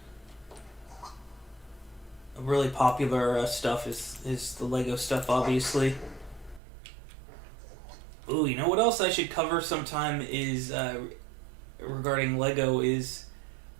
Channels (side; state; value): left; drops out; at 6.6 s